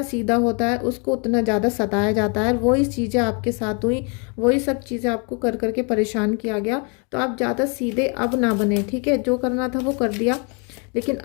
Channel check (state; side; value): quieter; right; 35.2 dB